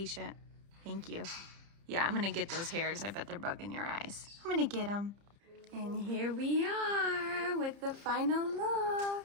Thank you. Yeah, I'm gonna get those hairs. I bet they're bugging your eyes. I'm gonna get them. And here we are with the final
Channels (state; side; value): late; left; 30 ms